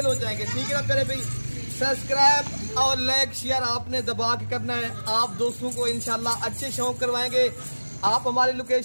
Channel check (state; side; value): inverted; both; correlation -1.00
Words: हो जाएंगे। ठीक है ना प्यारे भाई। सब्सक्राइब और लाइक शेयर आपने दबा के करना है। आप दोस्तों को इंशाल्लाह अच्छे शौक करवाएंगे। आप हमारी